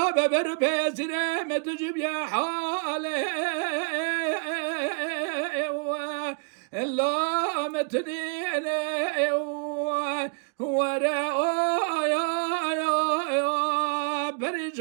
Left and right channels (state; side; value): quieter; left; 37.1 dB